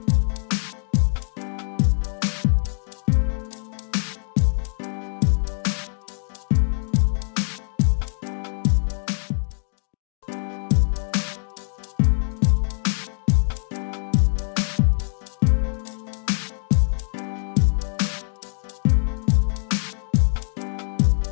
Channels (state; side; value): silent; right; 61 dB below the other